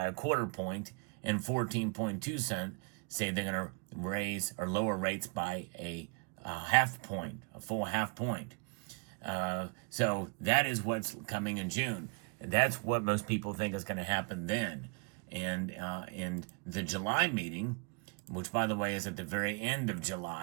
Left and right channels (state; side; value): quieter; left; 33.0 dB